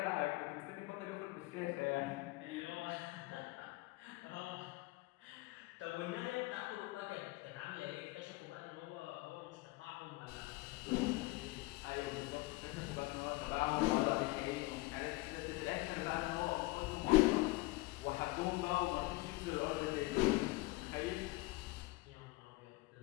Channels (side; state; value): right; quieter; 22.0 dB